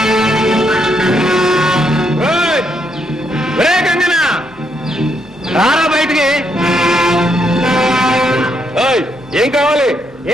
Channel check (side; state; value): both; normal; correlation 0.76